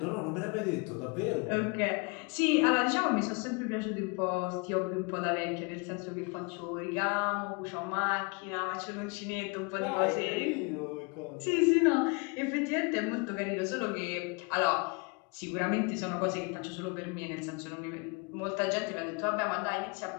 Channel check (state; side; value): quieter; right; 31.5 dB